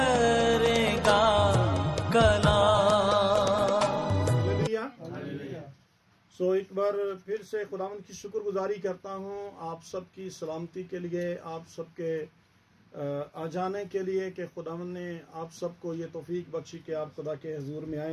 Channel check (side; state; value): both; identical; correlation 1.00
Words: कलाम। सो एक बार फिर से खुदावंद की शुक्रगुजारी करता हूँ आप सबकी सलामती के लिए, आप सबके आ जाने के लिए कि खुदावंद ने आप सबको ये तौफीक बख्शी कि आप खुदा के हजूर में